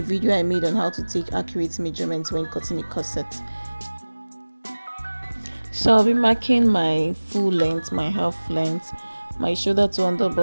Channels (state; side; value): inverted; both; correlation -1.00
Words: video I made on how to take accurate measurements when cutting a corset. So I'll be marking my full length, my half length, my shoulder to under